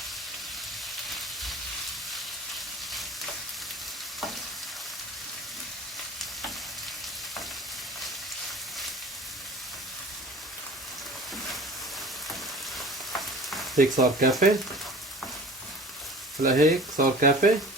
هيك صار كافي. هلا هيك صار كافي،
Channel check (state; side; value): normal; both; correlation 0.42